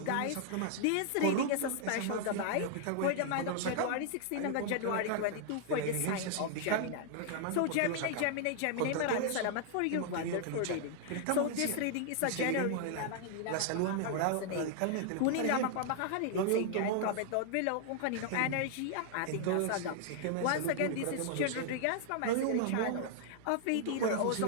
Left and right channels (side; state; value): both; different; correlation -0.01